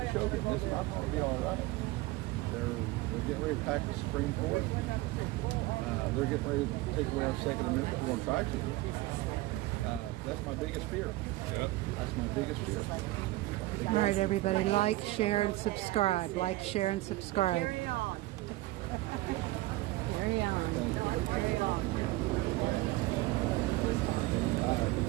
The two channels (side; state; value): left; quieter; 18.9 dB